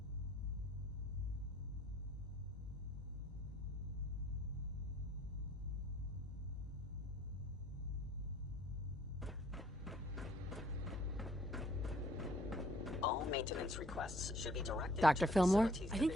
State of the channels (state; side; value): normal; both; correlation 0.60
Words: All maintenance requests should be directed Dr. to Fillmore? facilities I think